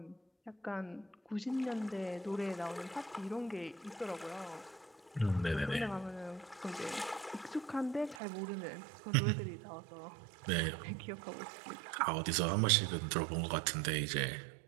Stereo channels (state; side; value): drops out; left; at 8.2 s